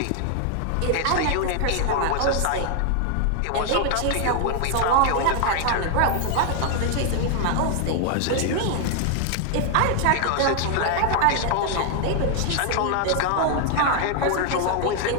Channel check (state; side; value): different; both; correlation 0.00